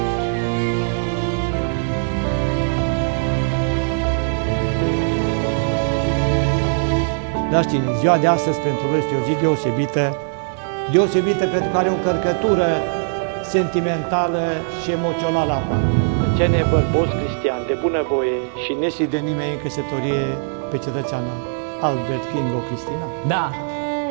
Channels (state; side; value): silent; left; digital silence